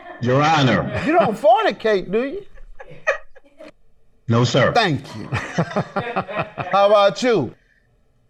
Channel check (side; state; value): both; identical; correlation 1.00